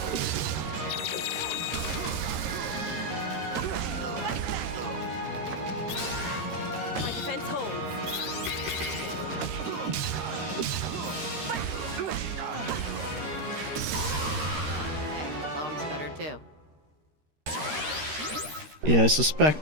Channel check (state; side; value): late; left; 13 ms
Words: My defense holds. Hey, bomb's better too. Yeah, I